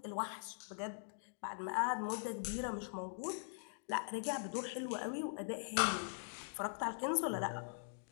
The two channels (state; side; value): silent; right; digital silence